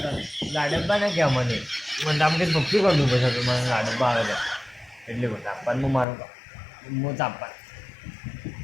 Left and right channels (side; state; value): right; drops out; at 6.1 s